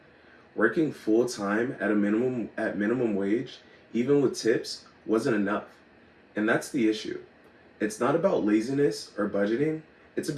Working full time at minimum wage, even with tips, wasn't enough. And that's the issue. It's not about laziness or budgeting, it's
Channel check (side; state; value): both; identical; correlation 1.00